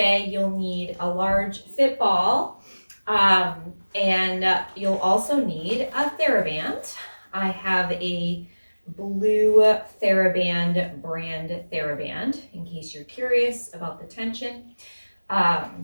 you'll need a large fit ball, and you'll also need a theraband. I have a blue theraband brand theraband in case you're curious about the tension.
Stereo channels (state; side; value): inverted; both; correlation -1.00